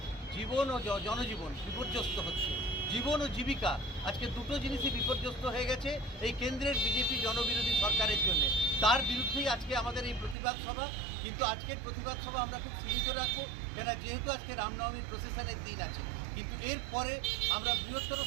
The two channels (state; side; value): drops out; left; at 10.4 s